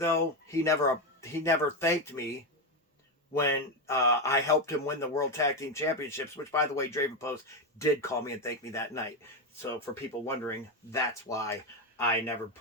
he never thanked me when I helped him win the World Tag Team Championships, which by the way, Draven Post did call me and thank me that night. So for people wondering, that's why I never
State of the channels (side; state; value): both; normal; correlation 0.10